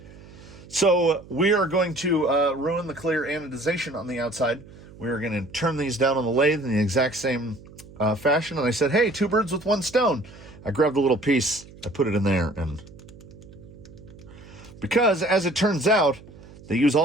So we are going to ruin the clear anodization on the outside. We are going to turn these down on the lathe in the exact same fashion. And I said, hey, 2 birds with 1 stone. I grabbed a little piece, I put it in there, and because as it turns out, they use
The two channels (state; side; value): noise; right; hum, 20 dB below the sound